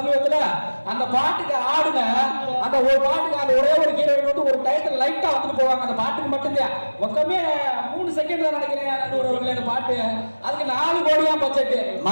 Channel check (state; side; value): inverted; both; correlation -1.00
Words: அந்த பாட்டுக்கு ஆடுன அந்த ஒரு பாட்டுக்கு அந்த ஒரே ஒரு ஹீரோயின் வந்து ஒரு டைட்டில் லைட்டா வந்துட்டு போவாங்க. அந்த பாட்டுக்கு மட்டும்தான் மொத்தமே 3 செகண்ட் தான் நினைக்கிறேன் அந்த பாட்டு. அதுக்கு 4 கோடியா பட்ஜெட்.